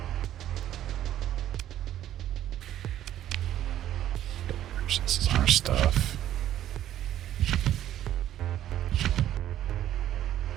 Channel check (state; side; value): quieter; left; 12.0 dB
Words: This is our stuff.